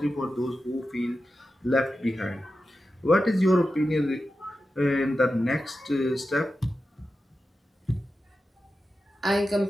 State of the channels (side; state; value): both; normal; correlation 0.92